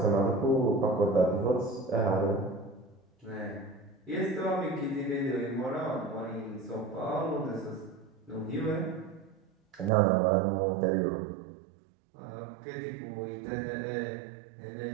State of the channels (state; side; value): drops out; left; at 9.9 s